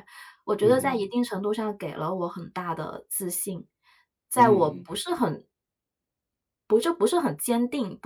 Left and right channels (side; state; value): both; identical; correlation 1.00